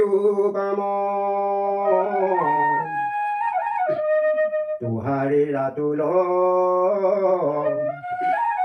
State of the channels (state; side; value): identical; both; correlation 1.00